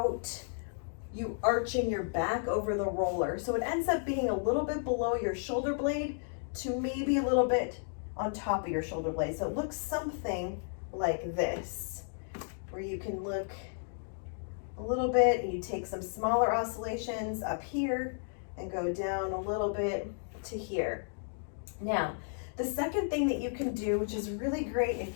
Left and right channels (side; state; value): right; silent; digital silence